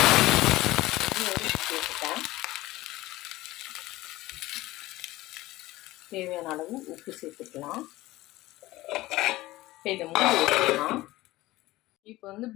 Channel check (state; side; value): quieter; right; 18.0 dB